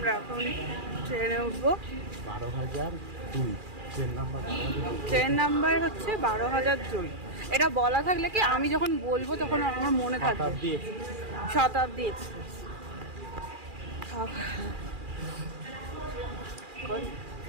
এখন ট্রেনে উঠবো। 12,002 ট্রেন নাম্বার হচ্ছে 12,002। এটা বলা থাকলে কি আমি যখন বলবো তখন আমার মনে থাকবে। শতাব্দী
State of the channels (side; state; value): left; late; 2.4 ms